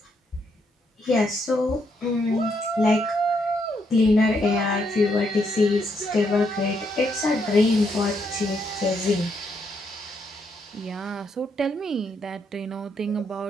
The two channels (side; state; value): both; normal; correlation 0.76